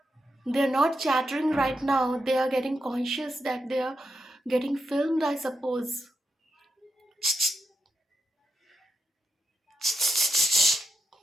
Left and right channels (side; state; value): both; normal; correlation 0.85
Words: They're not chattering right now, they are getting conscious that they are getting filmed, I suppose.